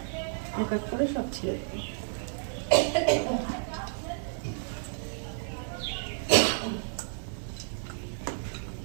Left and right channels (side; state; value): left; silent; digital silence